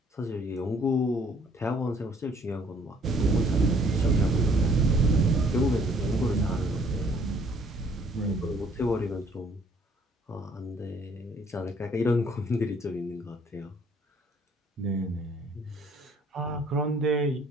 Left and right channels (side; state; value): both; normal; correlation 0.61